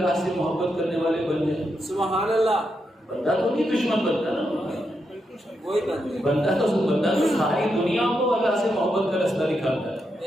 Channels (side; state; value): both; normal; correlation 0.83